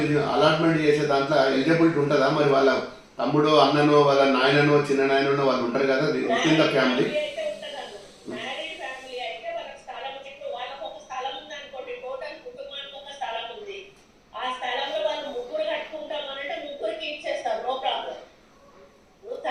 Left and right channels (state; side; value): identical; both; correlation 1.00